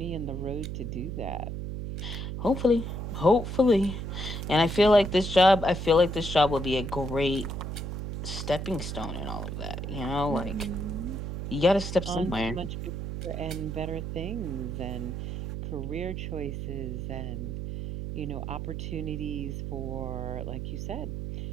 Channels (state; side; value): noise; right; hum, 5 dB below the sound